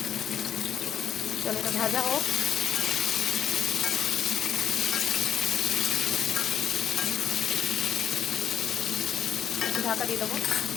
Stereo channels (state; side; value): quieter; right; 9.2 dB